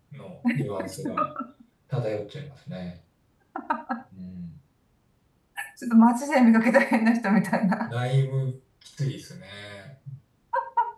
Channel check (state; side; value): identical; both; correlation 1.00